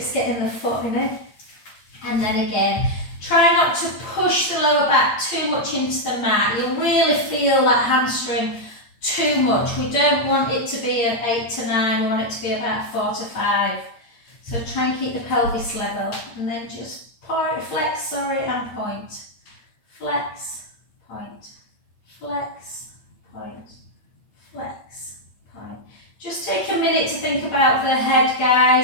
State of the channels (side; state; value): right; late; 8.7 ms